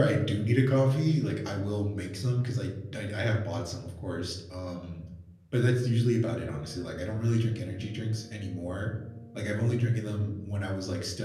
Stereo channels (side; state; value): both; identical; correlation 1.00